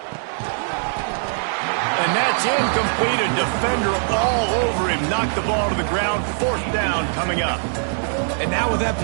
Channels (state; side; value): silent; left; digital silence